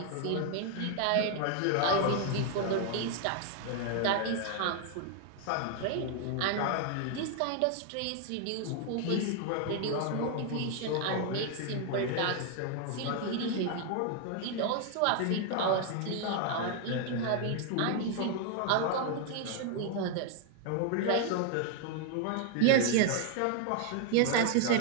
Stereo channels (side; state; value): both; different; correlation 0.00